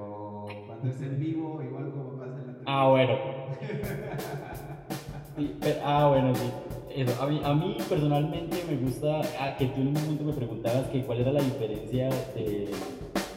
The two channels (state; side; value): identical; both; correlation 1.00